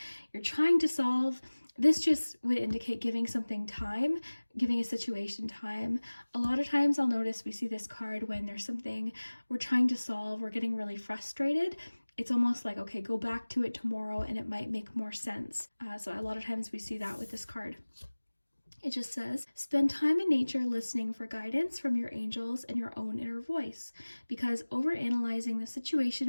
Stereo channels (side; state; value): both; inverted; correlation -1.00